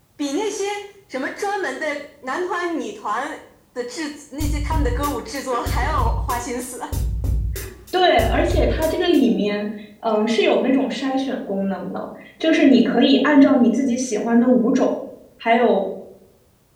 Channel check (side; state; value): both; identical; correlation 1.00